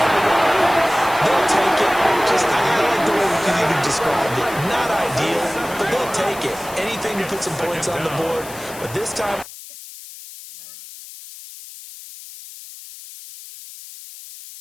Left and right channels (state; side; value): noise; left; hiss, 15 dB below the sound